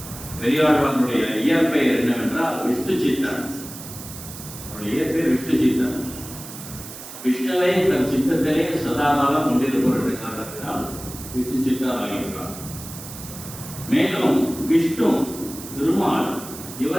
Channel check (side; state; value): right; noise; hiss, 13 dB below the sound